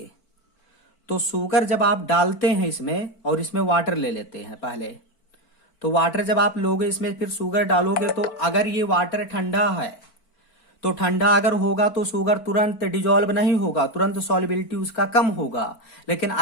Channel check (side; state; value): right; late; 4.5 ms